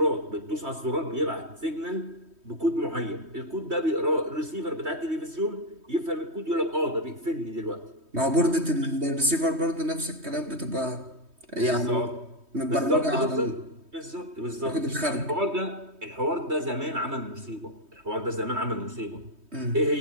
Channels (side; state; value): left; late; 3.2 ms